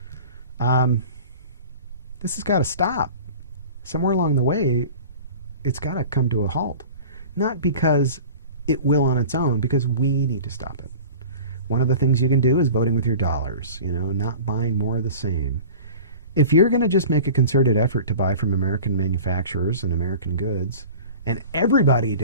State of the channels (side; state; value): both; inverted; correlation -0.39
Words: This has got to stop. Somewhere along the way, it's got to come to a halt. Not because it will on its own, because we need to stop it. One of the things you can do is voting with your dollars, not buying more of the same. If you're going to just make a concerted effort to buy from American manufacturers and American goods, and everybody